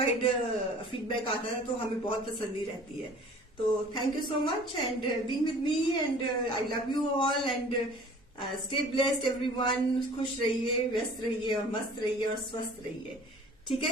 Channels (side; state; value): both; normal; correlation 0.48